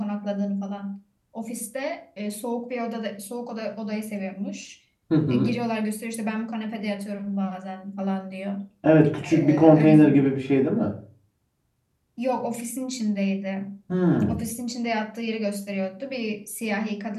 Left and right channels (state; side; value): identical; both; correlation 1.00